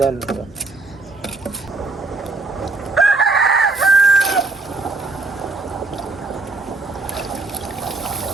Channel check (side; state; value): left; quieter; 3.5 dB